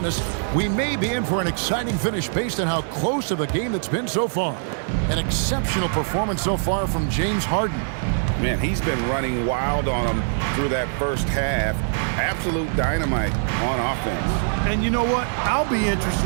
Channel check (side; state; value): left; silent; digital silence